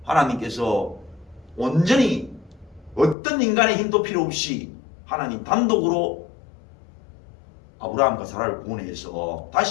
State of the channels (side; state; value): right; drops out; at 3.2 s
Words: 하나님께서 온전히 어떤 인간의 힘도 필요 없이 하나님 단독으로 아브라함과 사라를 구원해서